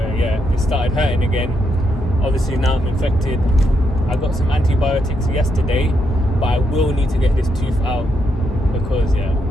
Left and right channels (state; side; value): normal; both; correlation 0.80